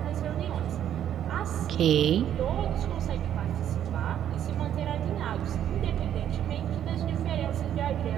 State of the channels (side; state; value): left; quieter; 10.3 dB